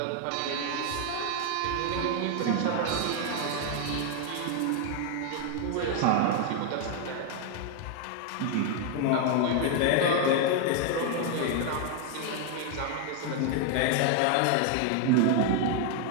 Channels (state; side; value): different; both; correlation 0.00